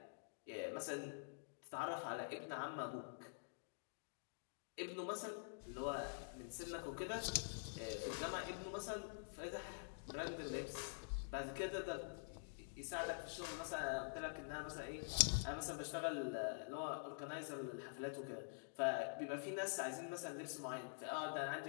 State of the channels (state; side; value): silent; right; digital silence